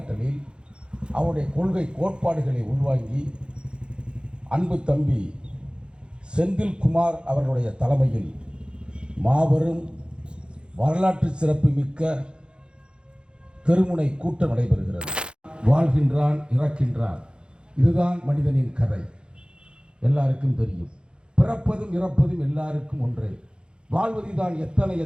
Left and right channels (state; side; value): late; left; 0.052 ms